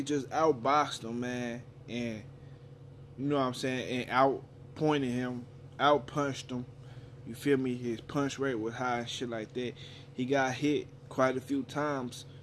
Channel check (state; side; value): identical; both; correlation 1.00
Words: just outboxed him, man. And, you know what I'm saying? And outpointed him, outpunched him. You feel me? His punch rate was high and shit like that. He got hit quite a few times,